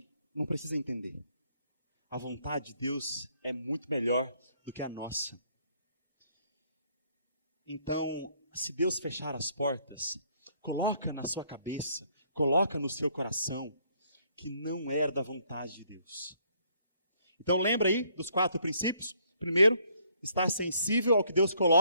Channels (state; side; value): inverted; both; correlation -0.67